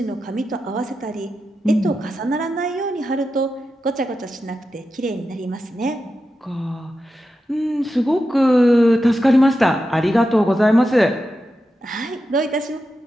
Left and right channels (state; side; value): normal; both; correlation 0.89